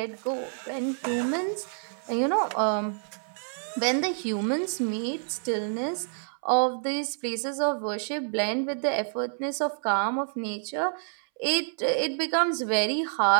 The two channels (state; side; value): silent; left; 59 dB below the other